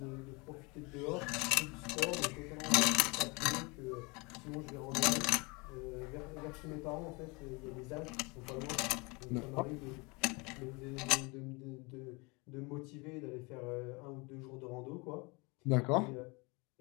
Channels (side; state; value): right; quieter; 27.8 dB